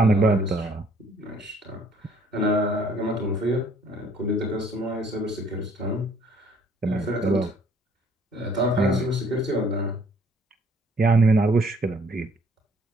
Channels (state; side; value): normal; both; correlation 0.61